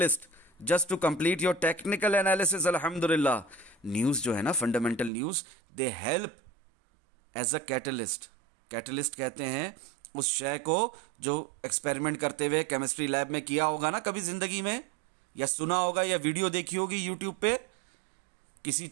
just to complete your technical analysis. अल्हम्दुलिल्लाह, न्यूज़ जो है ना, fundamental news, they help as a catalyst. Catalyst कहते हैं उस शय को जो एक्सपेरिमेंट करते हुए केमिस्ट्री लैब में किया होगा ना कभी ज़िंदगी में, या सुना होगा या वीडियो देखी होगी यूट्यूब पे, किसी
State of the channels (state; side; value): drops out; left; at 5.1 s